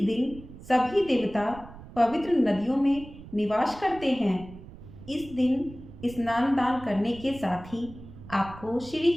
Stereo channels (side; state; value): right; noise; rumble, 17 dB below the sound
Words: दिन सभी देवता पवित्र नदियों में निवास करते हैं। इस दिन स्नान दान करने के साथ ही आपको श्री